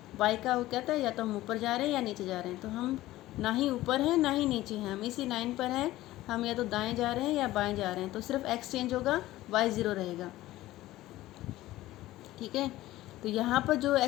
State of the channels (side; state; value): right; quieter; 16.2 dB